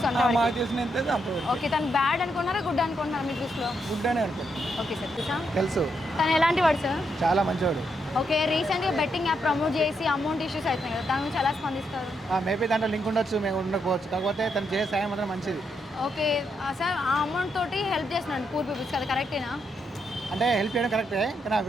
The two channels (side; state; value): both; normal; correlation 0.80